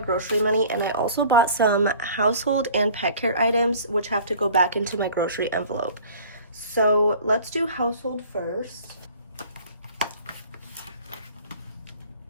money, and I also bought some household and pet care items, which have to go back into my grocery envelope. So let's do household first.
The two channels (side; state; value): both; inverted; correlation -0.47